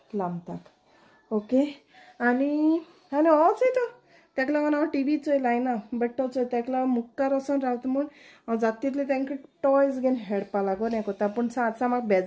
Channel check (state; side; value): identical; both; correlation 1.00